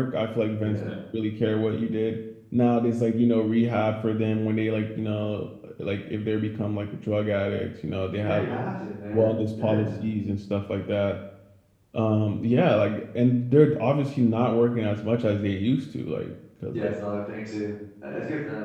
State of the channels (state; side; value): identical; both; correlation 1.00